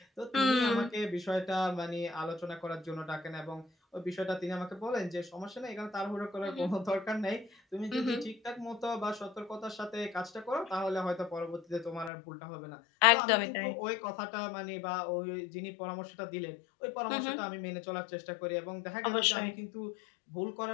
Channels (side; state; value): right; drops out; at 12.1 s